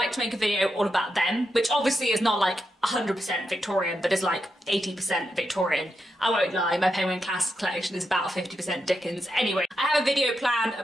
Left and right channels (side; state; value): both; normal; correlation 0.86